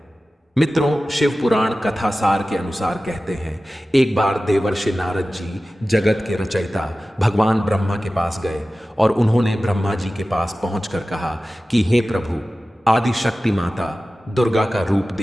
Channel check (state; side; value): normal; both; correlation 0.96